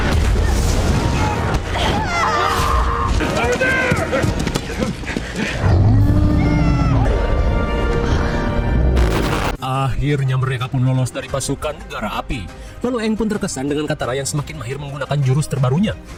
Akhirnya mereka pun lolos dari pasukan negara api. Lalu Aang pun terkesan dengan Katara yang semakin mahir menggunakan jurus terbarunya.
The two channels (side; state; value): both; identical; correlation 1.00